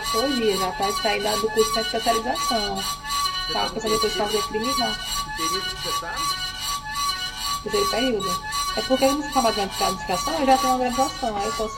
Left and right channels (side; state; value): both; identical; correlation 1.00